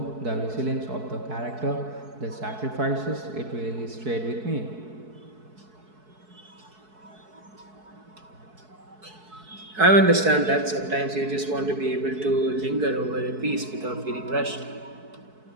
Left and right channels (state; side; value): late; left; 4.6 ms